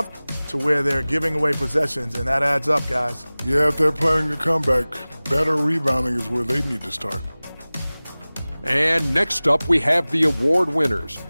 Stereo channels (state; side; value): inverted; both; correlation -0.99